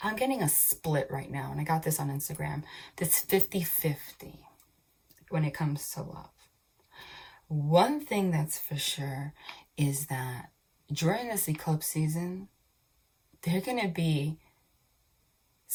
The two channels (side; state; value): both; identical; correlation 1.00